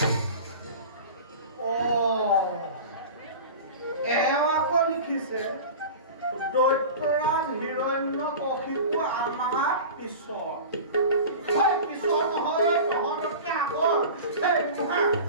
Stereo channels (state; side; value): inverted; both; correlation -0.34